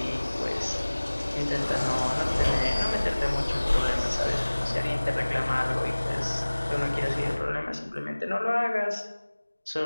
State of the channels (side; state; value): both; inverted; correlation -1.00